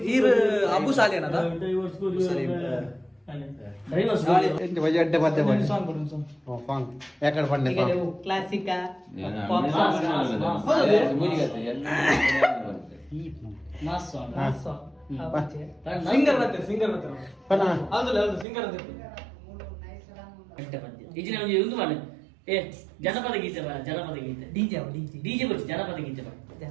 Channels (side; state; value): left; drops out; at 18.4 s